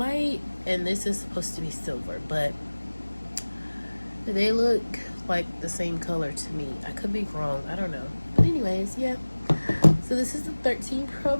and this is supposed to be silver, but they look like the same color to me. I could be wrong, I don't know. But anyways, yeah. So this is the 13 Pro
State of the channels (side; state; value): both; inverted; correlation -1.00